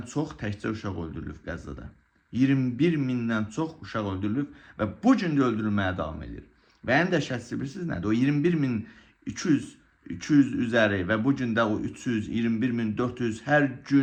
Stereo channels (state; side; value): identical; both; correlation 1.00